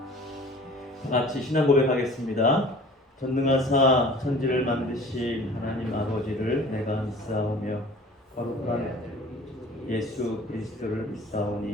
같이 신앙 고백하겠습니다. 전능하사 천지를 만드신 하나님 아버지를 내가 믿사오며 거룩한 예수 그리스도를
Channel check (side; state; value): both; normal; correlation 0.46